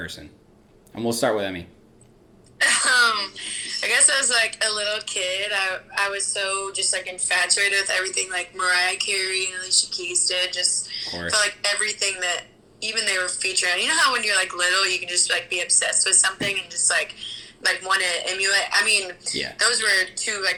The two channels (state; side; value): identical; both; correlation 1.00